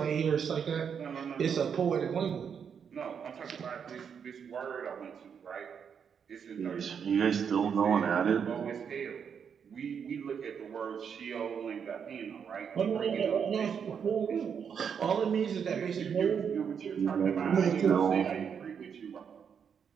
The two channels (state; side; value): quieter; left; 7.2 dB